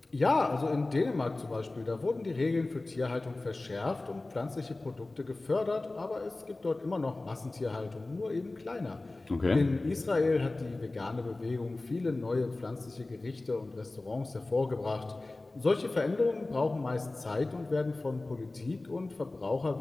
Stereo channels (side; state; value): right; quieter; 3.0 dB